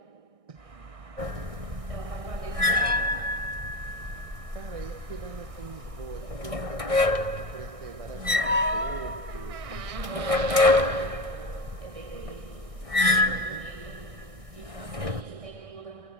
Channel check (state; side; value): late; left; 1.6 ms